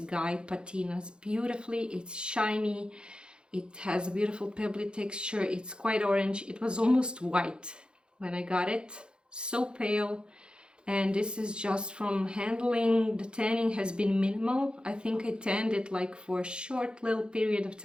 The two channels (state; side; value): late; left; 0.051 ms